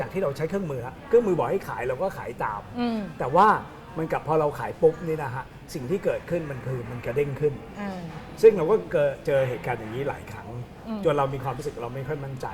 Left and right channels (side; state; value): both; identical; correlation 1.00